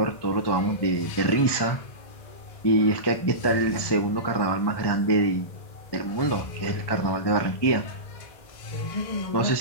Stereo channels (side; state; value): right; late; 1.2 ms